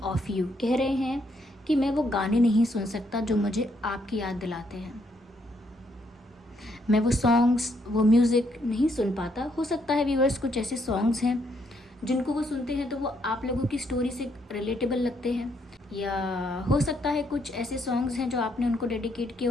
of you. कह रहे हैं कि मैं वो गाने नहीं सुन सकता जो मुझे आपकी याद दिलाते हैं। मैं वो सॉन्ग्स, वो म्यूज़िक नहीं सुन पाता। हो सकता है व्यूअर्स कुछ ऐसे सॉन्ग्स हैं जिनको वो सुनते हैं तो वो आप लोगों की स्टोरी से रिलेटेबल लगते हैं, या हो सकता है कुछ ऐसे सॉन्ग्स हैं जो आपने उनको डेडिकेट किए,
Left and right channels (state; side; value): normal; both; correlation 0.73